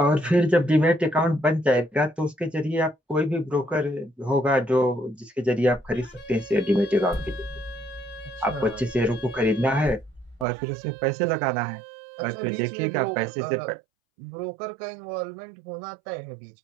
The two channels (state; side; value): drops out; left; at 10.5 s